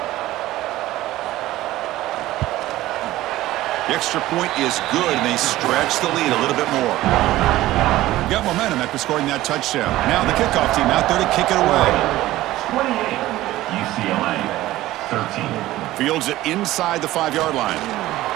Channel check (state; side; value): quieter; left; 16.0 dB